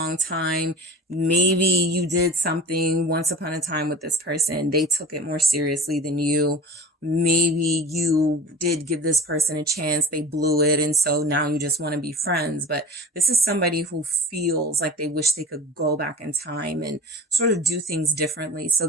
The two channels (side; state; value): both; normal; correlation 0.37